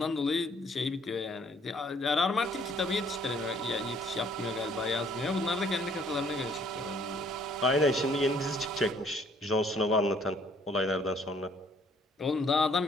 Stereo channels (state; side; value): normal; both; correlation 0.62